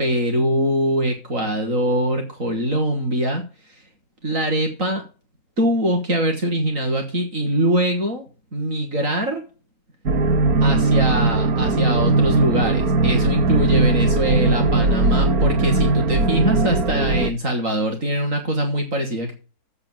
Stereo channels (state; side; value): late; left; 3.9 ms